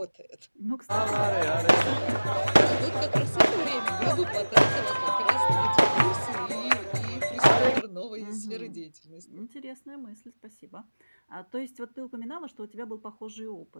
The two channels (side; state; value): both; inverted; correlation -1.00